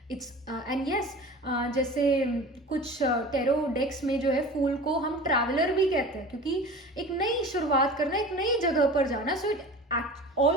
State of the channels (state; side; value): normal; both; correlation 0.37